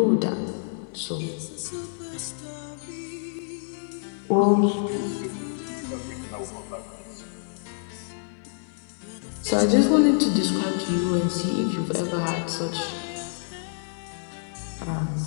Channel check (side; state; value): right; silent; digital silence